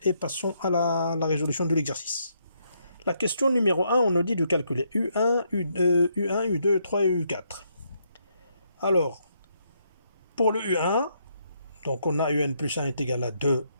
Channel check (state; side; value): inverted; both; correlation -0.75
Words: et passons à la résolution de l'exercice. La question numéro 1, on nous dit de calculer U1, U2, U2, U3 et U4. Alors, pour le U1, Donc on a un plus 1 est égal à 2